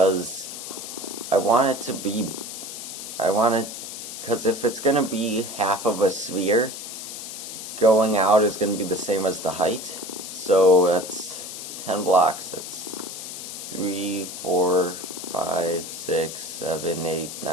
I want it to be... because if it's going to be half of a sphere, going out is going to be the same as the height. So that's 10 blocks, that's 3, 4, 5, 6, 7, 8,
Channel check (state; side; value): noise; left; hiss, 9 dB below the sound